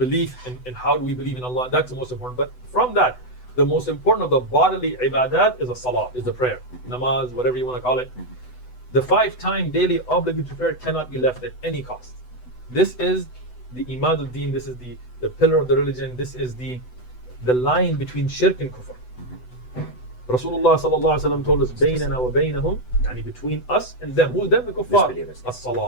in how do we believe in Allah, that's the most important. But from that, the most important of the bodily ibadat is a salah, is the prayer, namaz, whatever you want to call it. The 5-time daily obligatory prayer cannot be left at any cost. This is the imad al-deen, this is the pillar of the religion, this is the line between shirk and kufr. Rasulullah sallallahu alaihi wasallam told us, "Baynana wa baynahum," yani between us and them. Who's them? The kuffar.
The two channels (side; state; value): right; late; 8.0 ms